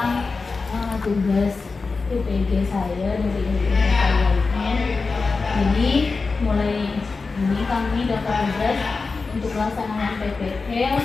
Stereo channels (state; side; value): quieter; right; 4.2 dB